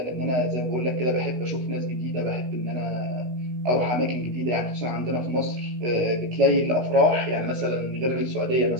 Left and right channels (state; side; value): late; left; 16 ms